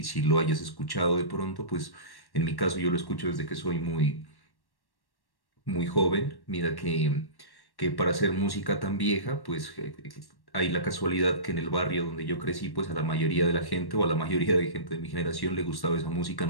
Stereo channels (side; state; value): right; late; 1.1 ms